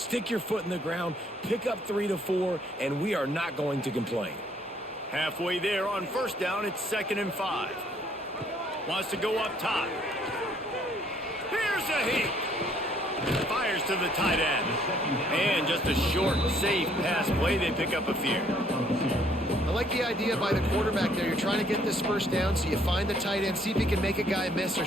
your foot in the ground, pick up 3 to 4, and we are not going to complain. Halfway there on first down, it's 2nd and 5. Wants to go up top. Here's a heat. Fires to the tight end. And just a short, safe pass play. They pick up a few. I like the idea by the quarterback there. You're trying to get this first down, so you find the tight end, see if he can make a guy miss or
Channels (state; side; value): normal; both; correlation 0.64